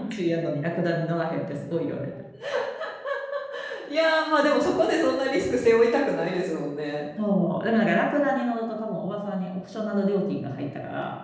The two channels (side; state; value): both; identical; correlation 1.00